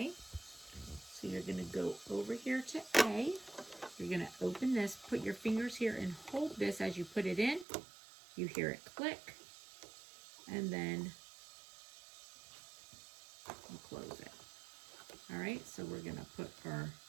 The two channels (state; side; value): drops out; left; at 7.7 s